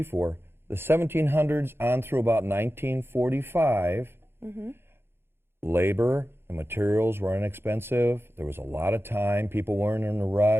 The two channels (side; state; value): left; late; 0.11 ms